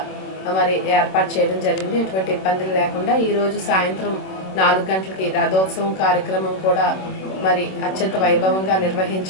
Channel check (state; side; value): late; right; 26 ms